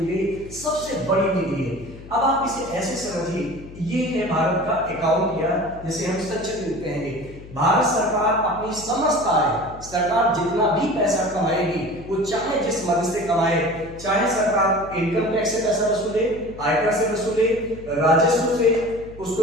गई सबसे बड़ी निधि है। अब आप इसे ऐसे समझिए, ये है भारत का अकाउंट या जिसे हम संचित निधि कहेंगे। भारत सरकार अपनी समस्त आय, सरकार जितना भी पैसा कमाएगी वो चाहे जिस मद से कमाए, चाहे सरकार इनकम टैक्स से पैसा वसूले, आयकर से वसूले, राजस्व से,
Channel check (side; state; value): left; noise; hum, 17 dB below the sound